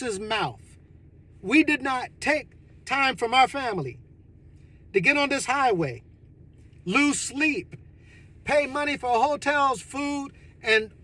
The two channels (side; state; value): both; identical; correlation 1.00